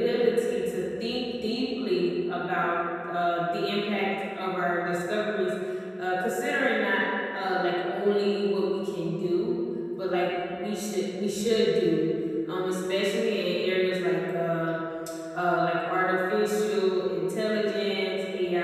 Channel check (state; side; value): identical; both; correlation 1.00